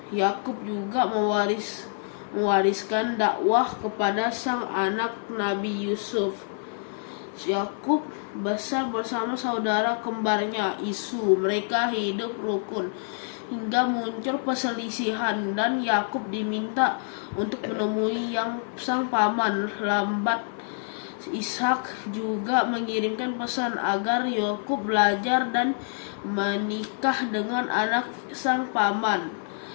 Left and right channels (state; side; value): silent; right; 55 dB below the other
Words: Yakub juga mewariskan dakwah kepada sang anak Nabi Yusuf. Yakub besar bersama saudara kembarnya Isu. Mereka hidup rukun hingga muncul perselisihan, dan Yakub diminta untuk menemui sang paman lambat. Ishak juga mengirimkan pesan agar Yakub belajar dan menikah dengan anak sang paman.